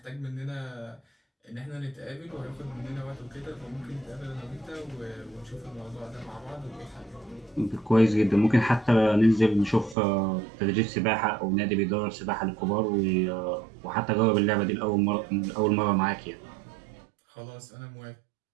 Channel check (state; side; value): drops out; left; at 10.0 s